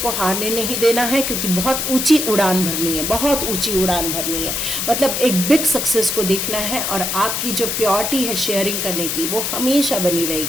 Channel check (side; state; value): left; noise; hiss, 1 dB below the sound